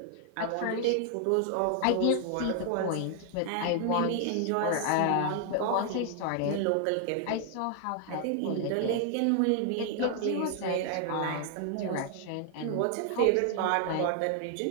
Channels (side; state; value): both; different; correlation 0.00